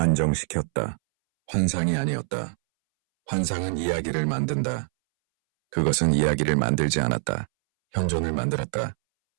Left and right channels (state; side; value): silent; left; 62 dB below the other